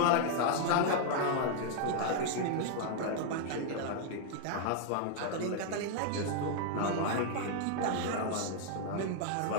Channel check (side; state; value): both; different; correlation -0.01